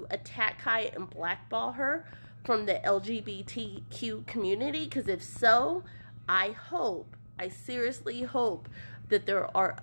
attack Kaya and blackball her from the LGBTQ community? Because if so, I seriously hope that there are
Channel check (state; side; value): inverted; both; correlation -1.00